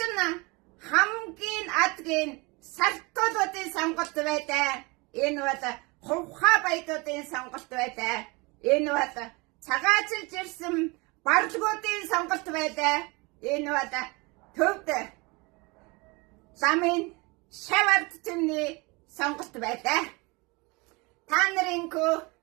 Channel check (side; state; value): left; quieter; 26.4 dB